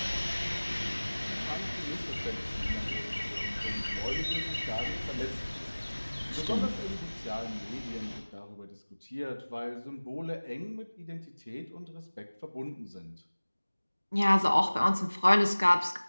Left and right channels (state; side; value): inverted; both; correlation -1.00